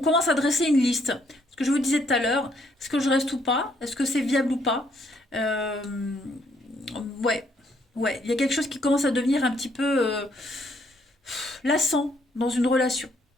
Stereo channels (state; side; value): normal; both; correlation 0.70